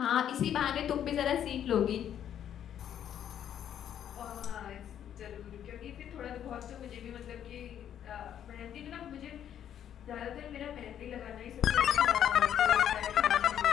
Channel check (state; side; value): quieter; right; 9.8 dB